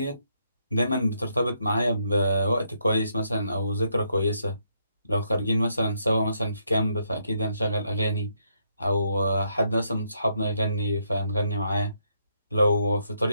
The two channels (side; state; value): both; inverted; correlation -0.75